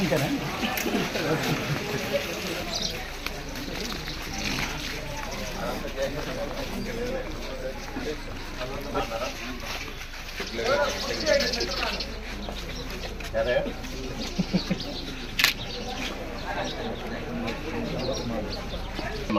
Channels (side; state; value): both; identical; correlation 1.00